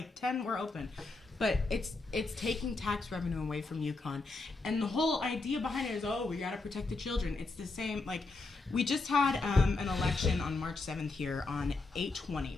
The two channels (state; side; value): quieter; right; 3.5 dB